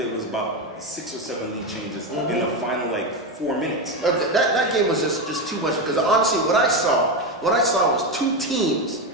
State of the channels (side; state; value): both; normal; correlation 0.13